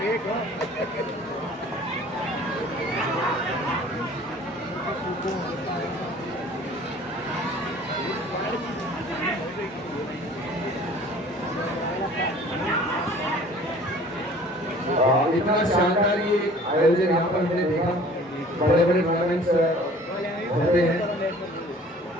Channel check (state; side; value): normal; both; correlation 0.49